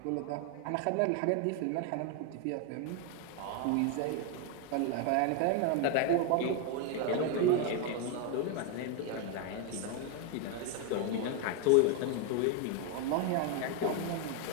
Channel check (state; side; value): different; both; correlation 0.01